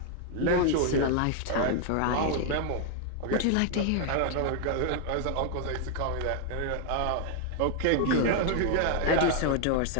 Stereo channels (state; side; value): different; both; correlation 0.00